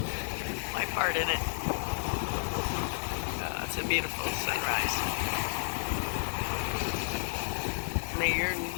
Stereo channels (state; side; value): silent; right; digital silence